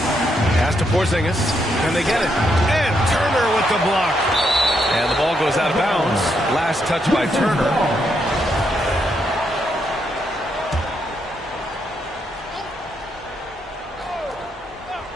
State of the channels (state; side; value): normal; both; correlation 0.78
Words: Pass to Porzingis. And they get it. And Turner with the block. And the ball goes out of bounds. Last touch by Turner.